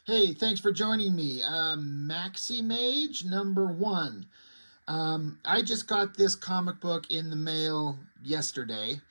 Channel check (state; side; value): inverted; both; correlation -1.00